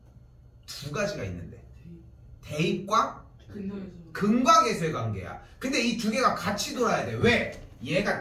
두 가지가 있는데 대입과 근과 계수의 관계야. 근데 이 두 개가 같이 돌아야 돼. 왜? 얘가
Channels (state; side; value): identical; both; correlation 1.00